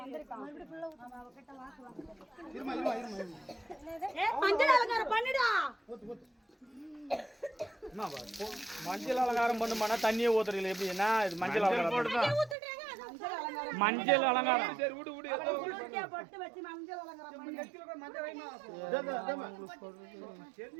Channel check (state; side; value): drops out; left; at 12.6 s